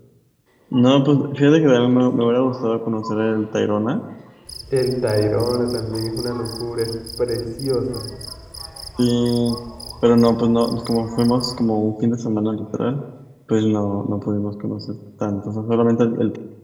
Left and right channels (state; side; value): identical; both; correlation 1.00